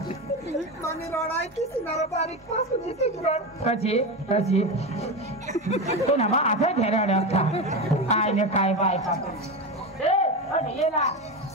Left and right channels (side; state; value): both; normal; correlation 0.19